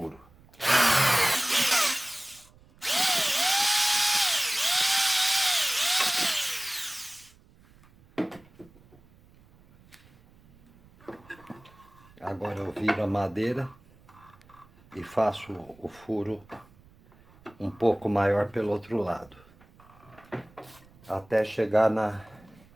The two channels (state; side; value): noise; right; rumble, 27 dB below the sound